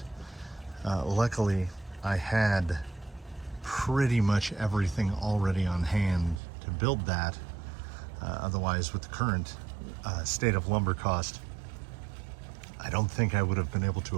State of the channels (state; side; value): drops out; left; at 6.4 s